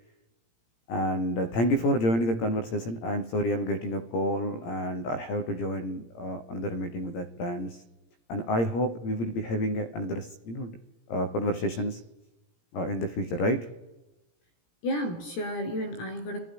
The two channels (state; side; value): late; right; 17 ms